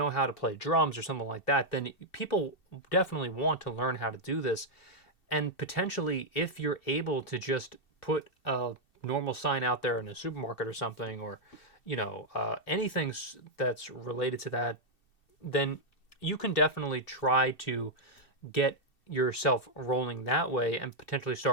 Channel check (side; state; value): right; late; 2.6 ms